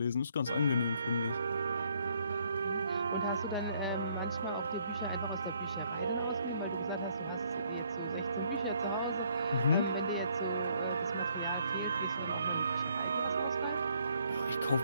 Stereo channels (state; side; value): inverted; both; correlation -0.68